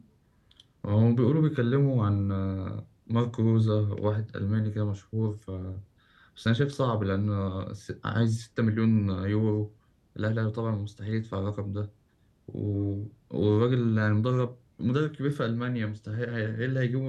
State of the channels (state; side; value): identical; both; correlation 1.00